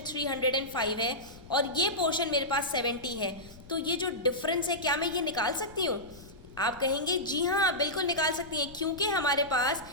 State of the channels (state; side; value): noise; left; rumble, 20 dB below the sound